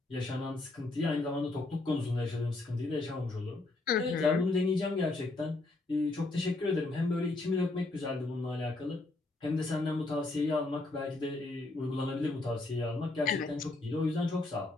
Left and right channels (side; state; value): right; quieter; 3.1 dB